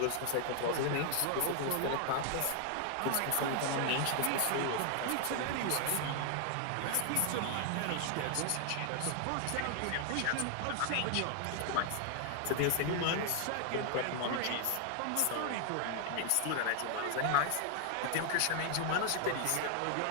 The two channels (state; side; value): different; both; correlation 0.00